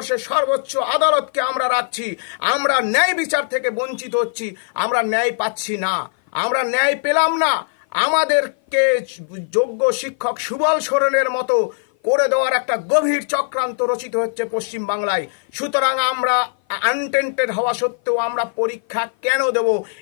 সর্বোচ্চ আদালতকে আমরা রাখছি। আমরা ন্যায় বিচার থেকে বঞ্চিত হচ্ছি, আমরা ন্যায় পাচ্ছি না, আমরা ন্যায় পেলাম না। আমাদেরকে যোগ্য শিক্ষক সুবল সোরেনের মতো করে দেওয়ার একটা গভীর চক্রান্ত রচিত হচ্ছে পশ্চিম বাংলায়। সুতরাং আমরা আনটেন্টেড হওয়া সত্ত্বেও আমরা পরীক্ষা কেন দেব?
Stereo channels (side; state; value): right; silent; 56 dB below the other